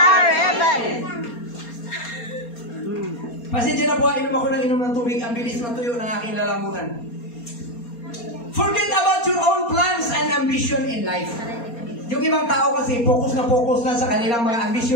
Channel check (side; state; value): right; late; 4.3 ms